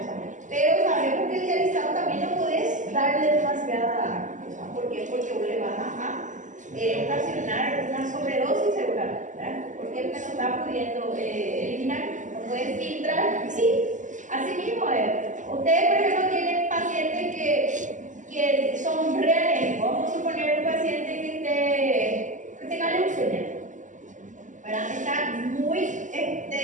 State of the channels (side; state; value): left; late; 0.37 ms